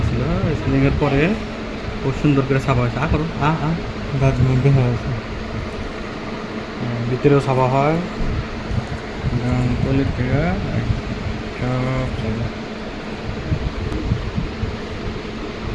ছিল, স্কিলিংয়ের পরে খুব সুন্দর করে সাফা হয়েছে। করো দাঁত মধ্যে হয়ে আছে। ভিতরেও সাফা হয়, টয়লেট থেকে সব জায়গা।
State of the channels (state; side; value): identical; both; correlation 1.00